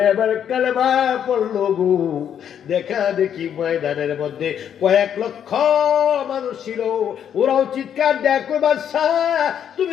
এবার কালেমা পড়লো গো। দেখা দেখি ময়দানের মধ্যে কয়েক লক্ষ মানুষ ছিল, ওরাও চিৎকার দেয় কই বাদশা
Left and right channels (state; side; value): quieter; right; 9.0 dB